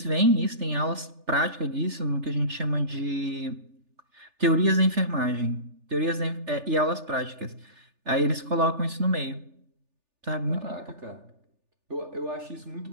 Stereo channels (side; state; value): left; late; 3.4 ms